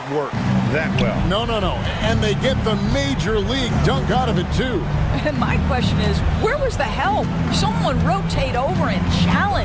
work that well. No. And they get the major league dunk out of it, too. And my question is, where was the help? Someone rotate over and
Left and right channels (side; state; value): both; identical; correlation 1.00